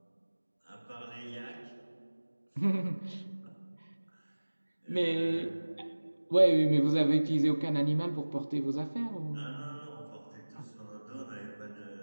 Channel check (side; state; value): both; inverted; correlation -1.00